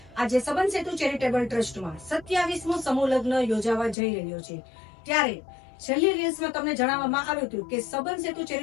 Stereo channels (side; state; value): right; drops out; at 4.0 s